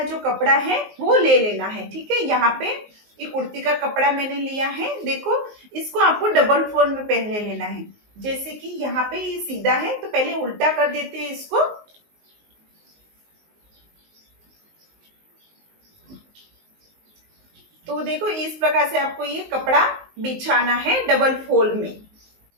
जो कपड़ा है वो ले लेना है। ठीक है, यहाँ पे ये कुर्ती का कपड़ा मैंने लिया है। देखो, इसको आपको डबल फोल्ड में पहले लेना है। जैसे कि यहाँ पे ये सीधा है तो पहले उल्टा कर देते हैं इसको। तो देखो, इस प्रकार से आपको ये कपड़ा बिछाना है डबल फोल्ड में।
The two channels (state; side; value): late; left; 19 ms